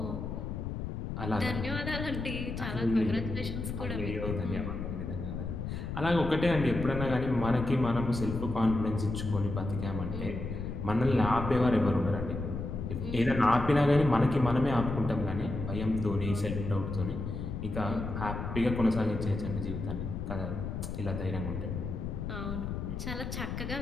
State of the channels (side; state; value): left; noise; rumble, 5 dB below the sound